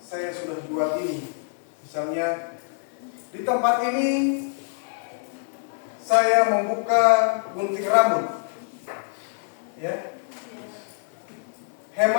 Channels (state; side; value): silent; right; digital silence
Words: sudah jual ini, misalnya di tempat ini saya membuka gunting rambut, ya,